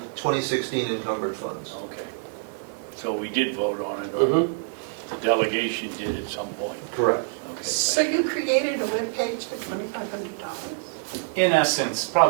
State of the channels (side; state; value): left; silent; digital silence